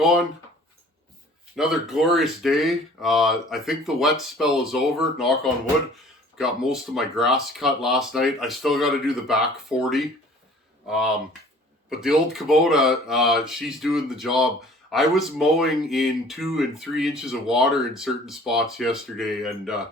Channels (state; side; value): normal; both; correlation 0.50